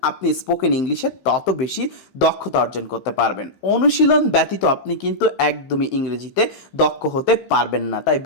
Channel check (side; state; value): right; late; 15 ms